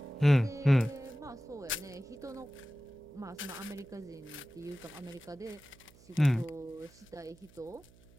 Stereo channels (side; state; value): right; noise; hum, 25 dB below the sound